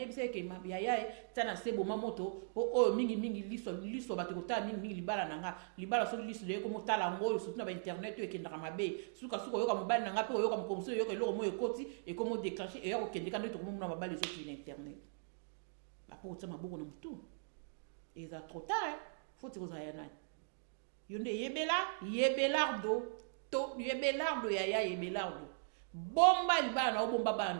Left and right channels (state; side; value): silent; left; digital silence